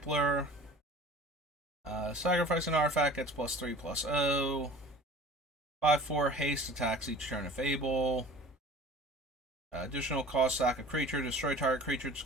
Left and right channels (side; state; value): both; normal; correlation 0.43